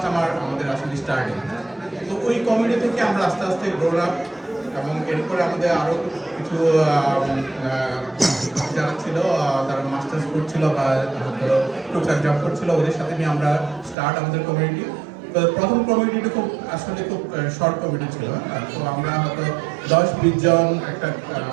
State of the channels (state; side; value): drops out; left; at 14.0 s